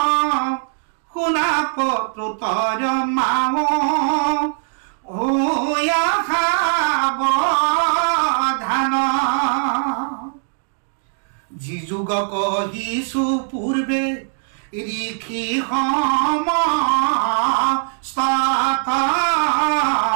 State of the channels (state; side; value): silent; left; digital silence